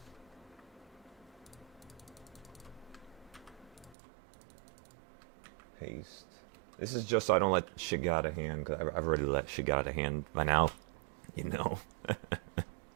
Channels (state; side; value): drops out; left; at 4.0 s